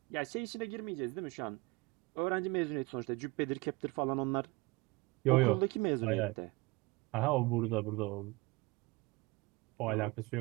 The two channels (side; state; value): left; quieter; 24.0 dB